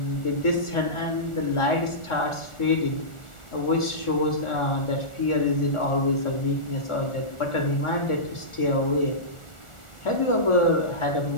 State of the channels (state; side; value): late; right; 1.4 ms